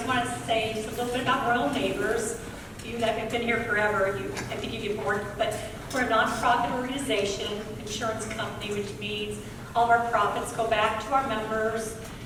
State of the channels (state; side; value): identical; both; correlation 1.00